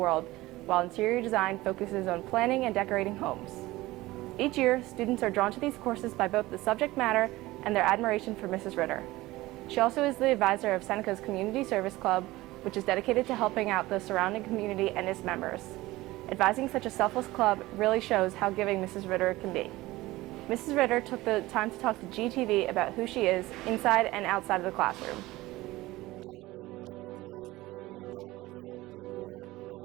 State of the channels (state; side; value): quieter; left; 18.6 dB